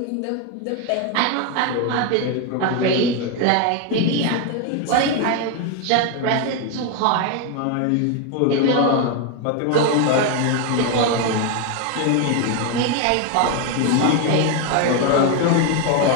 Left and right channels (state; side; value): different; both; correlation 0.01